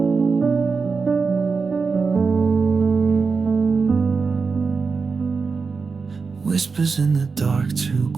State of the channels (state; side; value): quieter; left; 4.8 dB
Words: Whispers in the dark, too